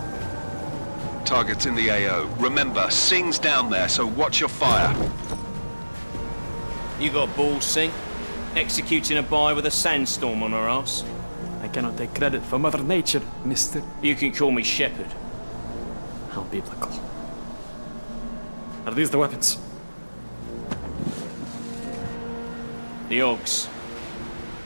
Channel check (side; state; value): both; inverted; correlation -1.00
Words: Target's in the AO. Remember, Singh's down there, so watch your fire. You got balls, Singh? Executing a buy with a sandstorm on our ass? I cannot take credit for Mother Nature, mister. You can call me Shepard. How biblical. Are these the weapons? The Ogs.